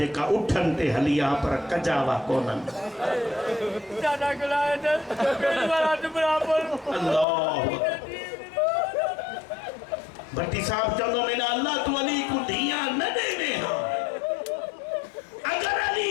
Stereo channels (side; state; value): right; drops out; at 7.2 s